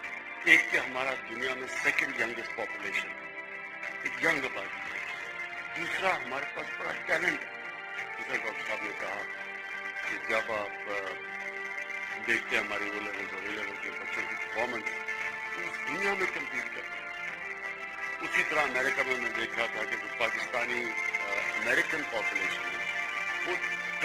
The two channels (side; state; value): both; identical; correlation 1.00